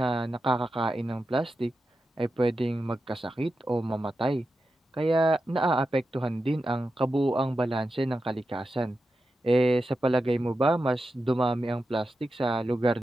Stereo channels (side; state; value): both; normal; correlation 0.90